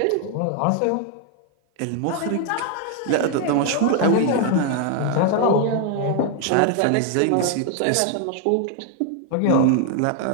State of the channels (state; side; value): different; both; correlation 0.00